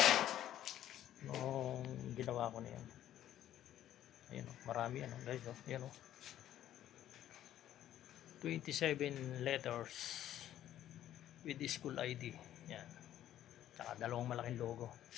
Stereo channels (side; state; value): right; quieter; 12.0 dB